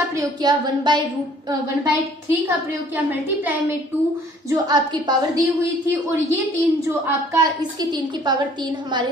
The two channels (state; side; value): normal; both; correlation 0.56